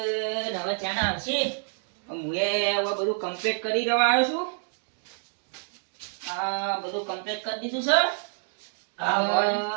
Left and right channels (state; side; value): silent; left; 60 dB below the other